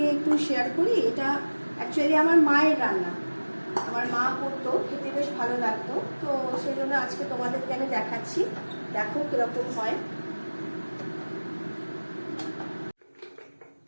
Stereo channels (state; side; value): inverted; both; correlation -1.00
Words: একটু শেয়ার করি। এটা অ্যাকচুয়ালি আমার মায়ের রান্না, আমার মা করতো, খেতে বেশ ভালো লাগতো। তো সেই জন্য আজকে তোমাদেরকে আমি দেখাচ্ছি। দেখো কিরকম হয়।